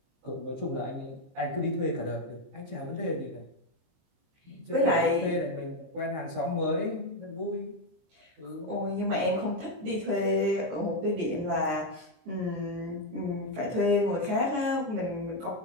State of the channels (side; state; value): left; late; 22 ms